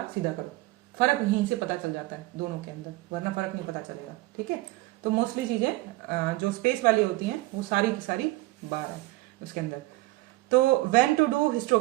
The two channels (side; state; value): left; quieter; 19.7 dB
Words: सीधा करो, फर्क यहीं से पता चल जाता है दोनों के अंदर, वरना फर्क नहीं पता चलेगा, ठीक है। तो मोस्टली चीजें जो स्पेस वाली होती हैं वो सारी की सारी बार है उसके अंदर। तो व्हेन टू डू